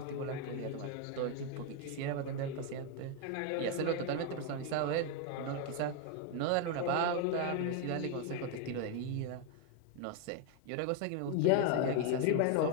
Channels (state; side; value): different; both; correlation 0.01